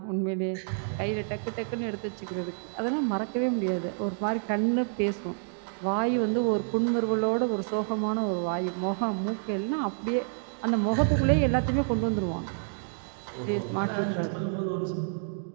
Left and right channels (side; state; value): left; silent; digital silence